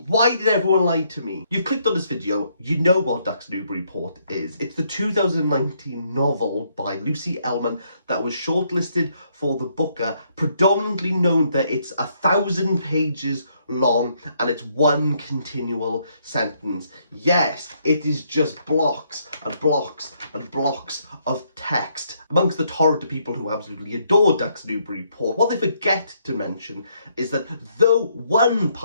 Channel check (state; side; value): inverted; both; correlation -0.72